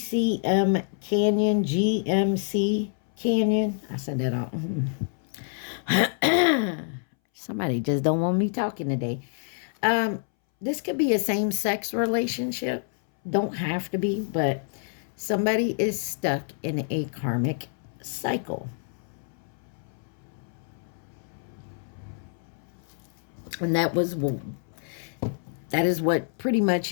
Canyon, GMC Canyon. I said that all. Somebody just don't want me talking today. This could be a same-sex relationship. Don't have to be, but somebody is stuck in a karmic cycle. And that is what pretty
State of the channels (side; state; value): right; silent; 60 dB below the other